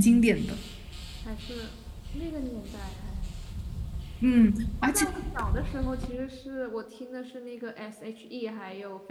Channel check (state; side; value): identical; both; correlation 1.00